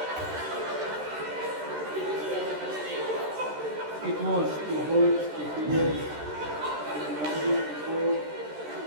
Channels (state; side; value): late; left; 13 ms